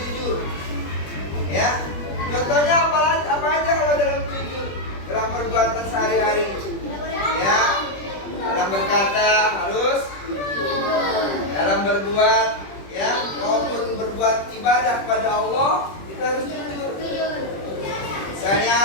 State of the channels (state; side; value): late; right; 20 ms